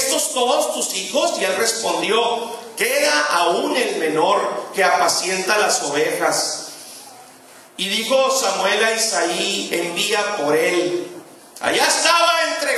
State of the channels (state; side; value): identical; both; correlation 1.00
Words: todos tus hijos? Y él respondió: queda aún el menor que apacienta las ovejas. Y dijo Samuel a Isaí: envía por él. Allá estaba